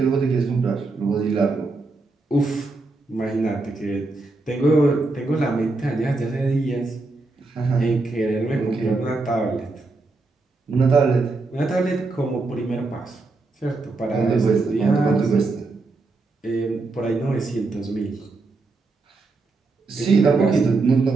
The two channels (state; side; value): quieter; left; 3.5 dB